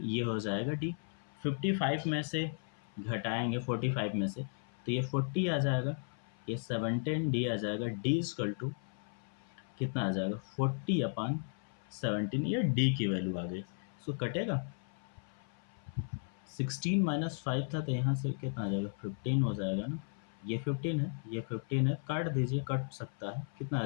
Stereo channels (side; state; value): right; silent; 54 dB below the other